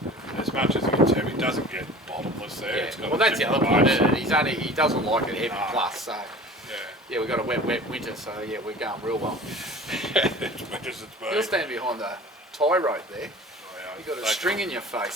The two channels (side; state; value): both; normal; correlation 0.41